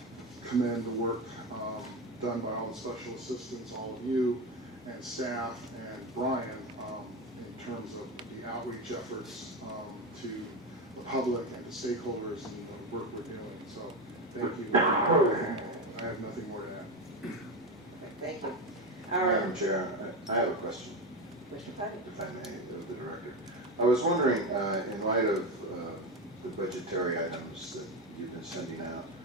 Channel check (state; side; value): normal; both; correlation 0.17